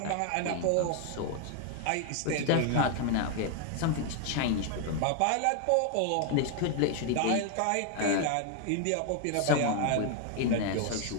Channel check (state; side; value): different; both; correlation 0.00